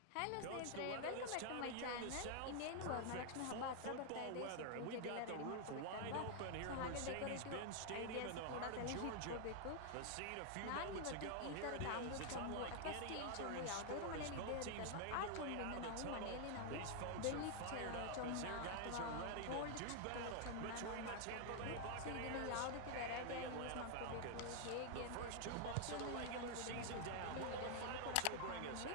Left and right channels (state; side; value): different; both; correlation 0.00